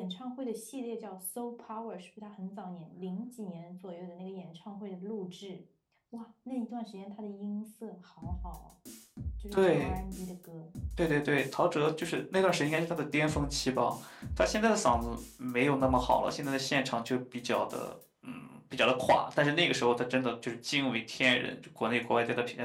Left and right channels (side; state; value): both; identical; correlation 1.00